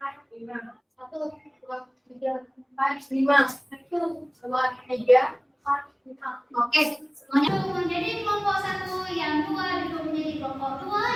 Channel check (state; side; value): identical; both; correlation 1.00